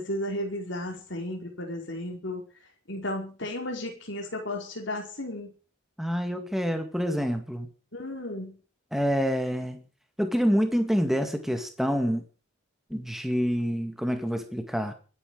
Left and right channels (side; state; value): both; normal; correlation 0.82